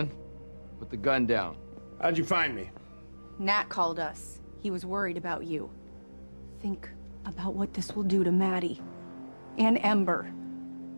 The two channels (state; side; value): inverted; both; correlation -1.00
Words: put the gun down. How'd you find me? Nat called us. He was worried about you. Think about what this will do to Maddie and Ember.